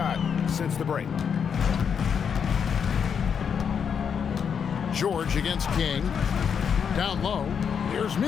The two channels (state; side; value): quieter; right; 7.1 dB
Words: since the break. George against King. Down low. Here's